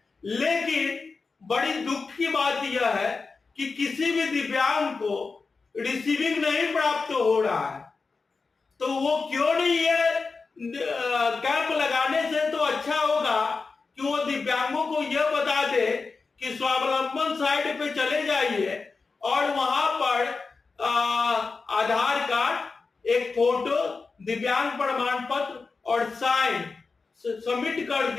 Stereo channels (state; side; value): quieter; right; 4.4 dB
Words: लेकिन बड़ी दुख की बात यह है कि किसी भी दिव्यांग को रिसीविंग नहीं प्राप्त हो रहा है। तो वो क्यों नहीं, ये कैंप लगाने से तो अच्छा होगा कि वो दिव्यांगों को यह बता दे कि स्वावलंबन साइट पे चले जाइए और वहां पर आधार कार्ड, एक फोटो, दिव्यांग प्रमाण पत्र और साइन सबमिट कर